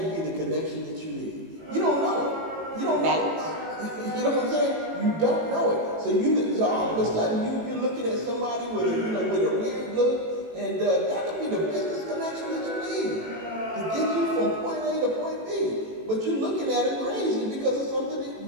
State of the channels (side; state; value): left; late; 18 ms